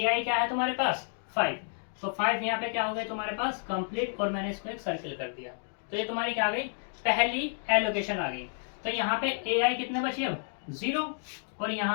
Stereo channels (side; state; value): right; silent; digital silence